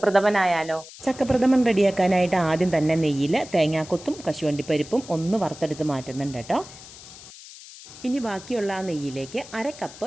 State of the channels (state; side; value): noise; left; hiss, 17 dB below the sound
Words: ചക്കപ്രഥമൻ റെഡിയാക്കാനായിട്ട് ആദ്യം തന്നെ നെയ്യിൽ തേങ്ങാക്കൊത്തും കശുവണ്ടിപ്പരിപ്പും ഒന്ന് വറുത്തെടുത്ത് മാറ്റുന്നുണ്ട് കേട്ടോ. ഇനി ബാക്കിയുള്ള ആ നെയ്യിലേക്ക് 1/2 കപ്പ്